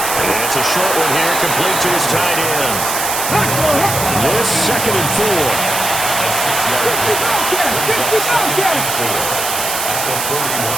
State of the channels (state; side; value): noise; right; hiss, 2 dB below the sound